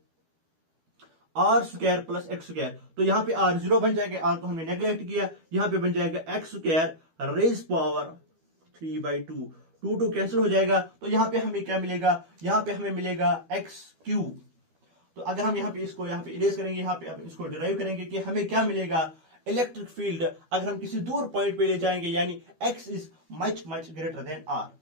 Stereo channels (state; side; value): late; left; 12 ms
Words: are square plus x square. तो यहां पे आर 0 बन जाएगा, आर को हमने नेग्लेक्ट किया, यहां पे बन जाएगा x square raise power 3/2, 2 cancel हो जाएगा। तो यहां पे हमें क्या मिलेगा, यहां पे हमें मिलेगा एक्स क्यूब। तो अगर हम यहां पे इसको यहां पे इरेज करेंगे, यहां पे इसको डिराइव करेंगे कि हमें क्या मिलेगा, इलेक्ट्रिक फील्ड अगर हम किसी दूर पॉइंट पे ले जाएंगे, यानी x is much greater than r.